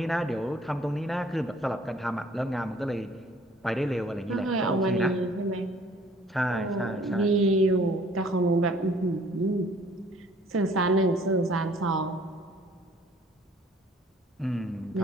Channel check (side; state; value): both; normal; correlation 0.56